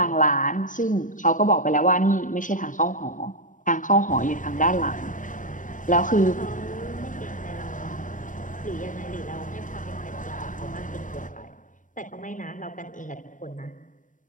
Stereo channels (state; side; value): late; right; 0.38 ms